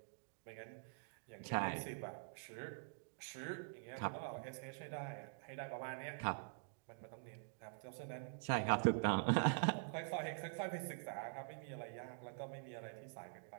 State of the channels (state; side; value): silent; left; digital silence